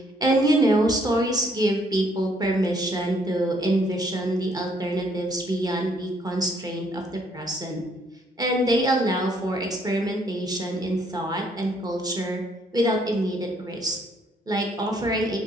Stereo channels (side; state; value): both; normal; correlation 0.67